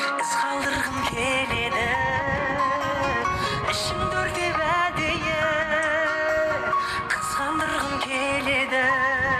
із қалдырғым келеді ішімді өртеп әдейі қызғандырғым келеді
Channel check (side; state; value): both; identical; correlation 1.00